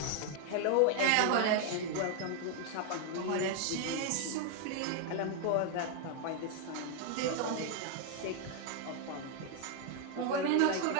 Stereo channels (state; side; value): different; both; correlation 0.00